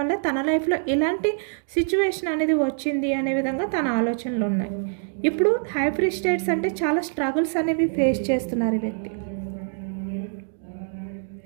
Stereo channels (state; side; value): silent; left; 62 dB below the other